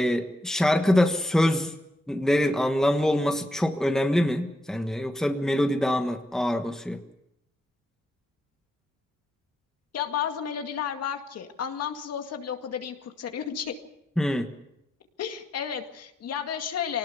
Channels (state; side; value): normal; both; correlation 0.81